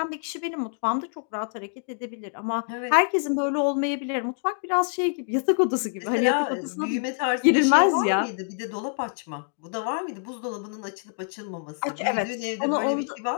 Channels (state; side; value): silent; right; digital silence